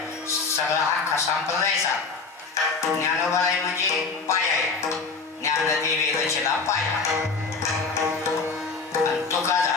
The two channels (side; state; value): right; quieter; 4.5 dB